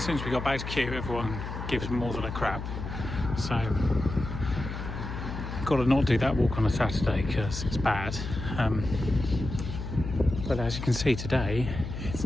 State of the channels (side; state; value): left; noise; hum, 6 dB below the sound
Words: soon as we got back to Kew, everyone gives more than a crap. So got to not do that walk on a Saturday because it's bad. But as you can see today, it's